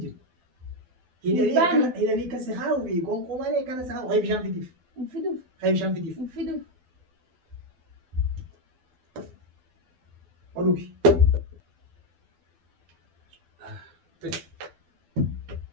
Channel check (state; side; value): late; left; 12 ms